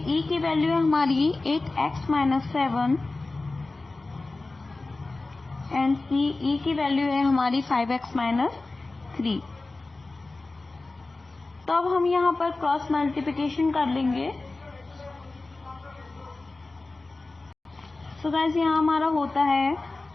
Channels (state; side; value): quieter; right; 3.3 dB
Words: की वैल्यू है हमारी 8x माइनस 7 एंड CE की वैल्यू है हमारी 5x माइनस 3। तो अब हम यहाँ पर क्रॉस मल्टीप्लिकेशन कर लेंगे। तो गाइस, यहाँ हमारा होता है